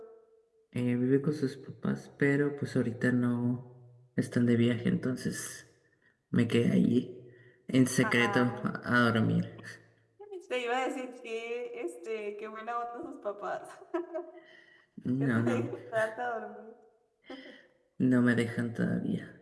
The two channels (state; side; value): identical; both; correlation 1.00